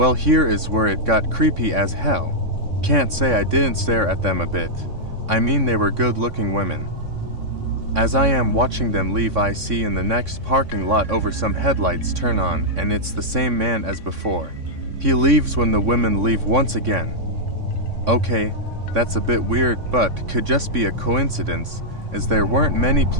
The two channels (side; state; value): left; late; 3.6 ms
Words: here is where it got creepy as hell. Can't say I didn't stare at them a bit. I mean, they were good-looking women. As I am watching them leave, I see in the next parking lot over some headlights turn on, and it's the same man as before. He leaves when the women leave once again. Okay, that's a bit weird, but could just be a coincidence, as there weren't many